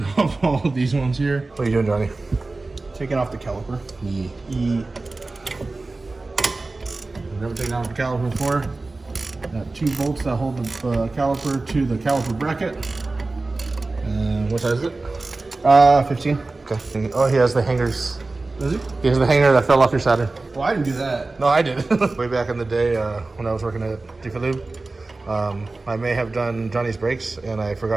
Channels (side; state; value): left; quieter; 3.4 dB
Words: off all of these ones here. What are you doing, Johnny? Taking off the caliper. Never taken off the caliper before. Got 2 bolts that hold the caliper to the caliper bracket. What size is it? 15. Okay. Oh, he has the hangers. Does he? He has the hanger that fell off your Saturn. Well, I didn't do that. No, I did. Way back in the day when I was working at Diff, I may have done Johnny's brakes and I